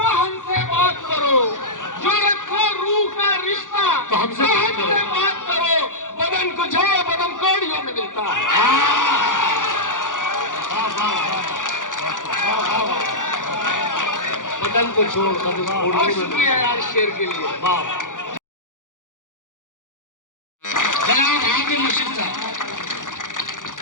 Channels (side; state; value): right; late; 0.88 ms